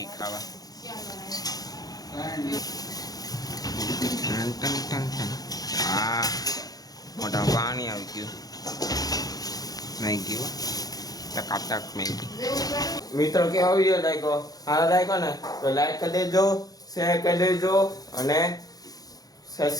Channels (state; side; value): late; right; 0.18 ms